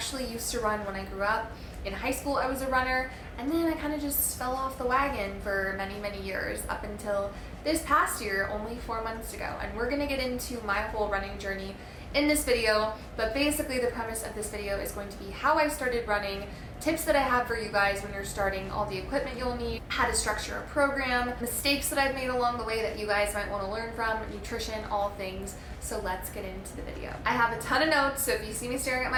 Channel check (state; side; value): identical; both; correlation 1.00